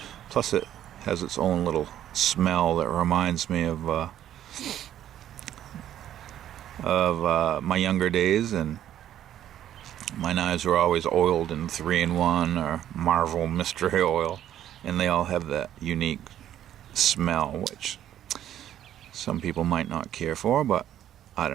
Plus it has its own little smell that reminds me of my younger days, and my knives were always oiled in 3-in-1 or Marvel mystery oil, and they all have that unique smell which some people might not care for, but I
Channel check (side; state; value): left; quieter; 11.4 dB